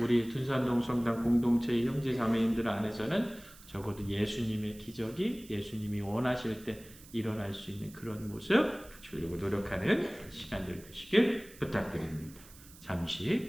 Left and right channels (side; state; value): right; noise; hiss, 21 dB below the sound